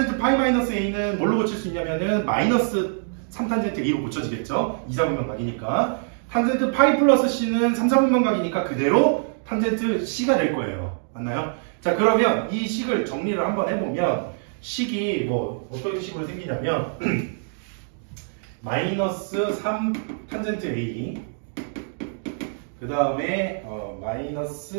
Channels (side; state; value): left; silent; digital silence